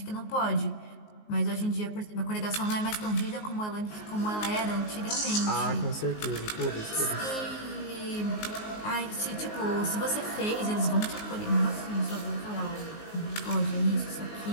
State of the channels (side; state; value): right; late; 19 ms